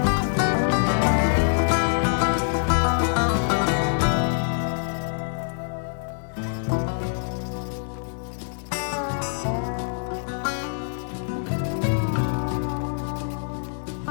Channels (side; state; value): right; silent; 60 dB below the other